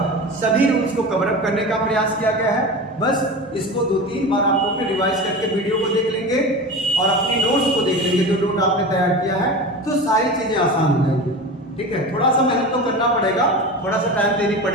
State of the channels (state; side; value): normal; both; correlation 0.30